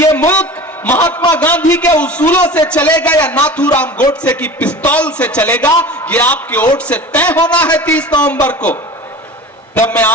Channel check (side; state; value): both; normal; correlation 0.36